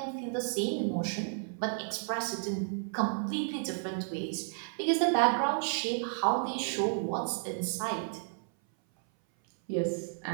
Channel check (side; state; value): left; silent; 56 dB below the other